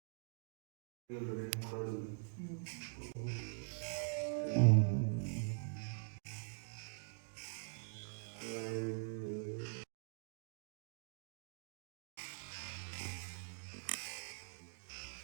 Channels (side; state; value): left; silent; digital silence